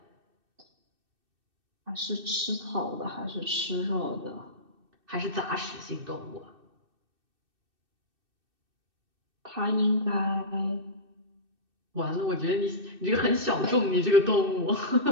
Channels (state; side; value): late; left; 2.6 ms